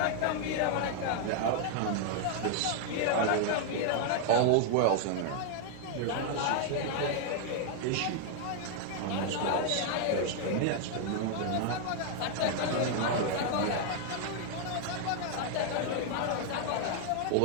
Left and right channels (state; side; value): different; both; correlation 0.00